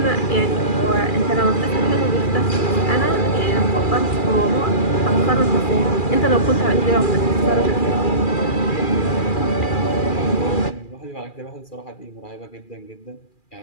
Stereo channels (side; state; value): right; late; 2.4 ms